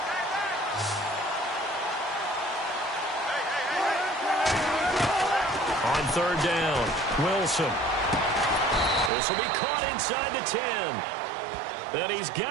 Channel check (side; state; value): left; drops out; at 9.1 s